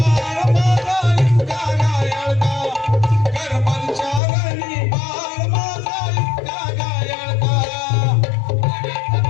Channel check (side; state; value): right; drops out; at 4.2 s